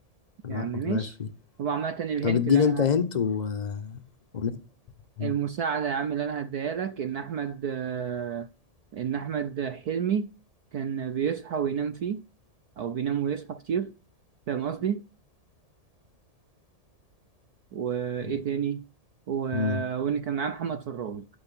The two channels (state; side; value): late; left; 1.7 ms